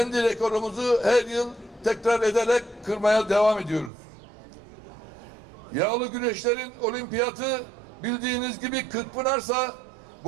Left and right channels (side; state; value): left; drops out; at 3.9 s